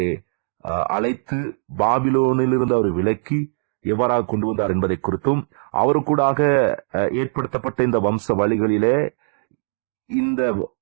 அழைத்து பாபிலோனிலிருந்து அவர் விலக்கி எவ்வாறாக கொண்டு வந்தார் என்பதை குறித்தும், அவருக்கூடாக ஏற்படுத்தப்பட்ட இந்த வம்ச வழிகளிலே இந்த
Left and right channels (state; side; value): silent; left; digital silence